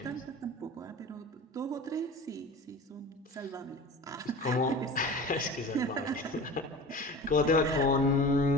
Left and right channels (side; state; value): both; normal; correlation 0.36